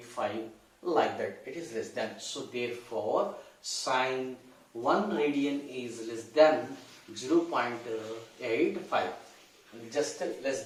like that. It is less than. So therefore sine 1 radian is less than 0.85, just less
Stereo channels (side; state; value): both; identical; correlation 1.00